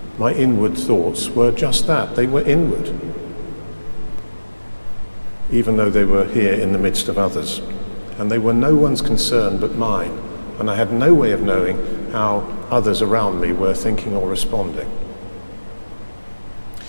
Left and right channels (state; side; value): inverted; both; correlation -1.00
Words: my inward thoughts were just that. They were inward, even though they were here in the midst of others. And they were no one's concern but mine. And I had no way of knowing how others around me were thinking or responding.